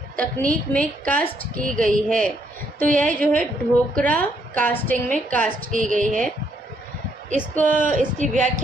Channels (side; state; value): both; normal; correlation 0.72